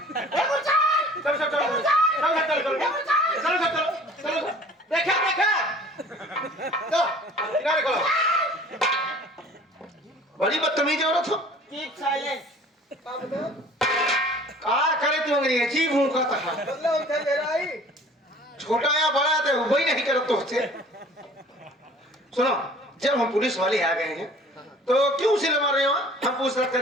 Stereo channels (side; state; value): both; normal; correlation 0.48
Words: बड़ी बदतमीज औरत हो। क्या करे तू अंग्रेजी अजीब हूँ का था। मतलब उनसे मेरा ही छोटा या बड़ा तो वही नहीं करत तो से सुनो, जब हम पुलिस वाले आ गए हैं तो क्यों उसे मार रहे हो? हम पूछताछ